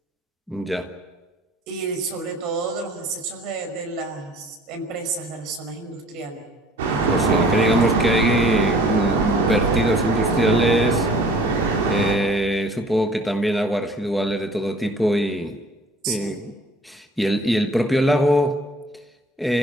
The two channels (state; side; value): normal; both; correlation 0.51